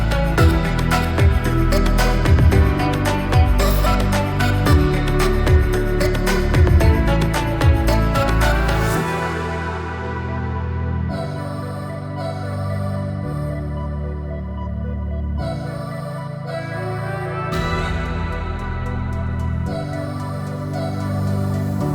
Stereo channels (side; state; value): both; identical; correlation 1.00